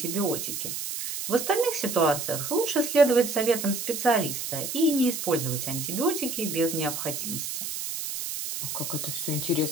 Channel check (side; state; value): right; noise; hiss, 5 dB below the sound